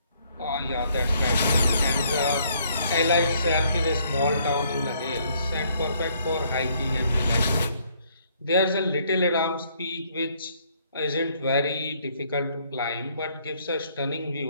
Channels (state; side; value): inverted; both; correlation -0.66